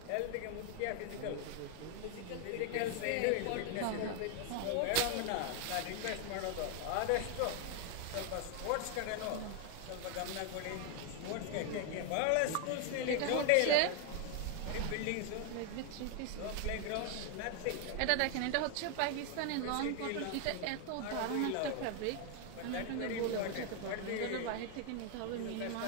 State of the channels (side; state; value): both; different; correlation 0.00